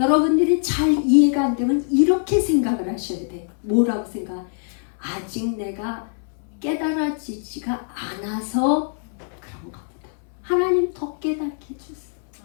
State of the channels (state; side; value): silent; right; 63 dB below the other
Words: 잘 이해가 안 되면 이렇게 생각을 하셔야 돼. 뭐라고 생각? 아직 내가 깨달아지지가 않아서 그런가 보다. 하나님 더 깨닫게 해주세요.